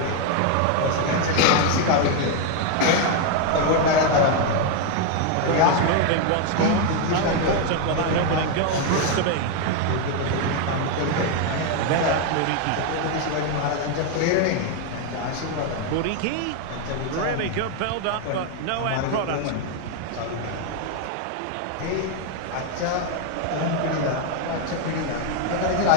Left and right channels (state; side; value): different; both; correlation 0.01